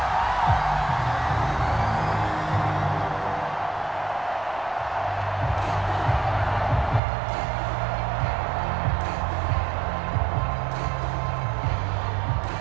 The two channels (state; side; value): drops out; left; at 7.0 s